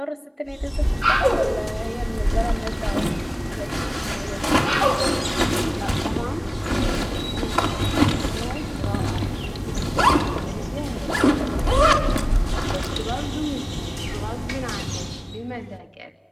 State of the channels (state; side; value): identical; both; correlation 1.00